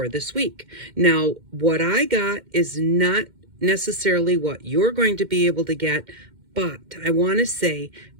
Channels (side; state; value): left; late; 2.1 ms